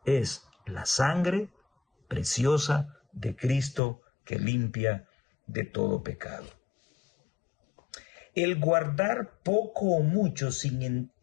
es la sangre preciosa de Cristo que limpia de todo pecado. El guardar poco o mucho sin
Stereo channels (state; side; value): drops out; right; at 3.8 s